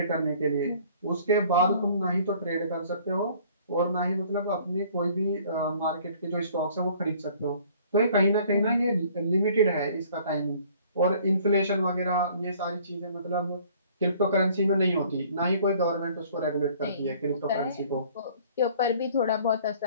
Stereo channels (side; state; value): both; inverted; correlation -0.55